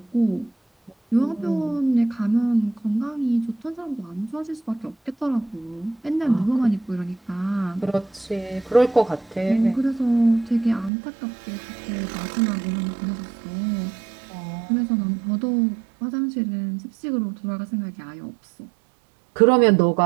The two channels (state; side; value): drops out; left; at 10.9 s